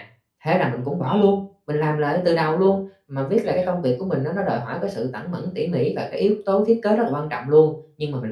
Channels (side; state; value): both; identical; correlation 1.00